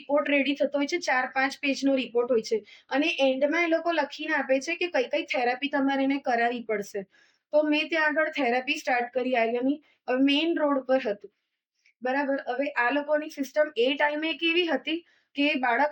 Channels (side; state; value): both; identical; correlation 1.00